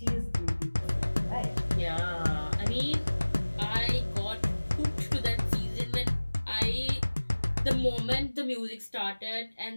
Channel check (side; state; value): both; inverted; correlation -1.00